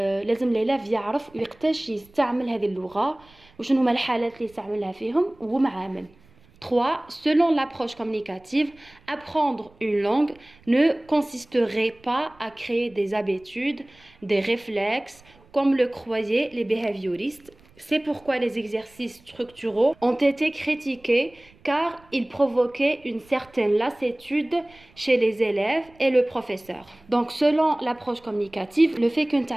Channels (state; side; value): noise; right; rumble, 29 dB below the sound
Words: اللاف يعرف ويقتاش يستعمل هذه اللغة وشنو هما الحالات اللي يستعملها فيهم ومع من. 3. Selon l'approche communicative, apprendre une langue ne consisterait pas à créer des habitudes, des réflexes, comme le croyaient les behavioristes. C'est pourquoi les exercices structuraux ont été critiqués car ils provoquaient une certaine lassitude chez les élèves et le professeur. Donc selon l'approche communicative, le fait que nous